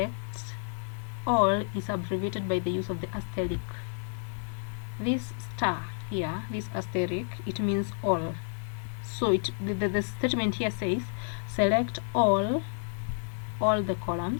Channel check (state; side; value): silent; right; digital silence